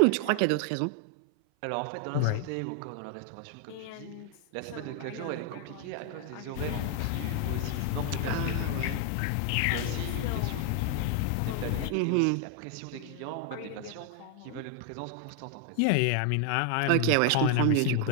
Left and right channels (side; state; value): both; different; correlation 0.00